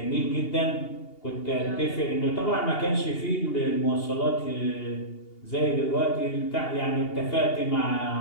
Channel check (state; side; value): late; right; 2.8 ms